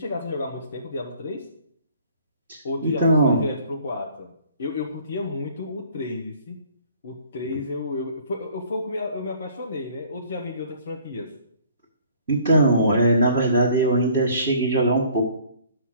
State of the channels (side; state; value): both; inverted; correlation -0.55